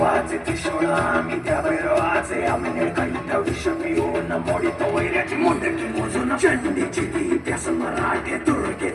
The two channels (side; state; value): both; identical; correlation 1.00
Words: त्रिशूळ आम्ही त्या भैरवाचे आम्ही निळकंठ विष पिऊन मोडितो वैऱ्याची मुंडकी मोजून चंडीची ती प्यास मराठे